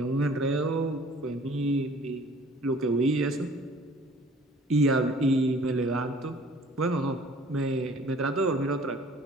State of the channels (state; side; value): normal; both; correlation 0.52